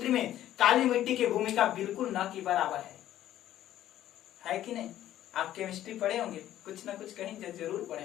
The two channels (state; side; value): quieter; right; 12.6 dB